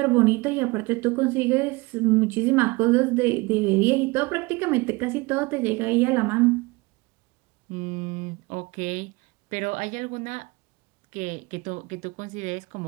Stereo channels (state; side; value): quieter; left; 24.2 dB